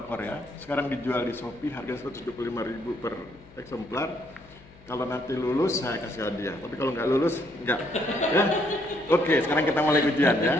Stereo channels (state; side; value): noise; left; hum, 24 dB below the sound